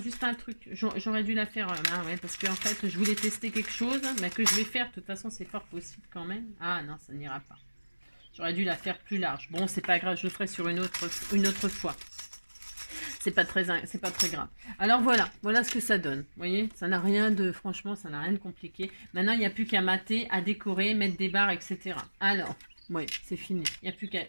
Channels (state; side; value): inverted; both; correlation -1.00